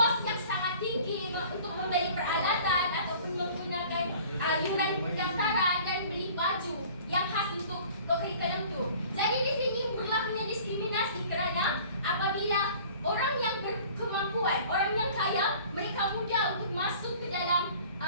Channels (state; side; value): inverted; both; correlation -0.48